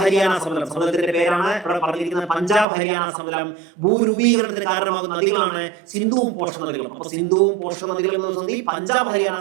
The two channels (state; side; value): drops out; left; at 2.7 s